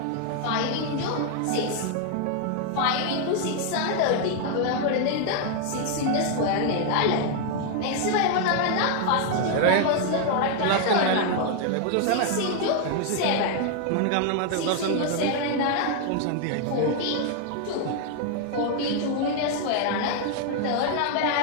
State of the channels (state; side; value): different; both; correlation 0.00